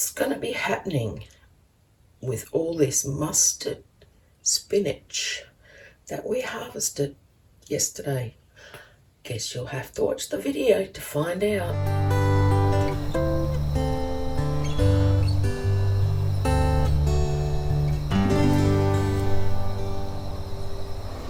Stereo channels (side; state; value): both; identical; correlation 1.00